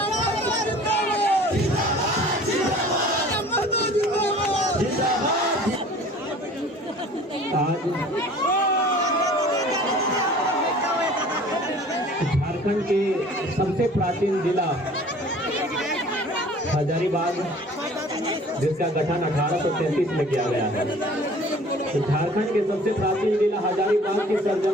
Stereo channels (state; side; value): normal; both; correlation 0.48